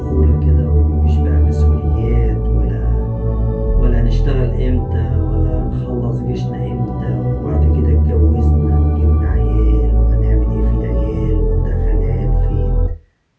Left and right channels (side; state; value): both; identical; correlation 1.00